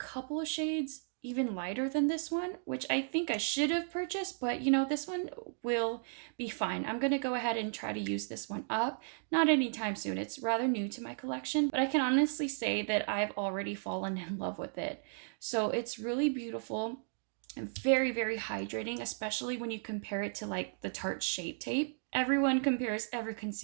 of shades even lighter than this one, which I think I should have purchased, but you know, this one will be fine. I'm gonna go ahead and try to use this one up. Not anytime soon, it's rather new to my collection, but I can honestly say that I've already fallen in love with it. So it's really beautiful and very, very hydrating, especially when you compare it to like the Tarte Shape Tape. Everyone compares every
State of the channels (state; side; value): silent; left; digital silence